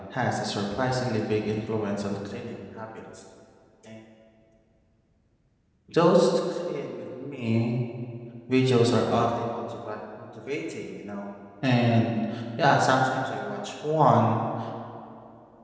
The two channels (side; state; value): both; identical; correlation 1.00